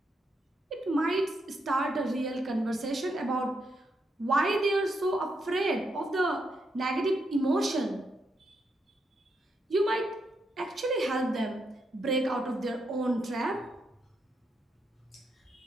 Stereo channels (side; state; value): both; normal; correlation 0.80